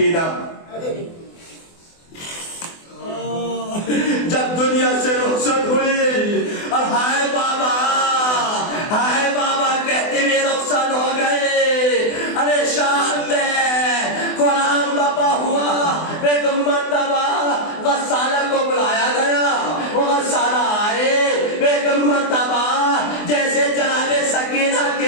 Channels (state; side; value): late; right; 24 ms